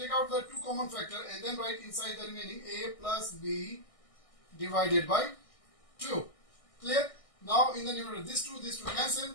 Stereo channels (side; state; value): right; late; 1.6 ms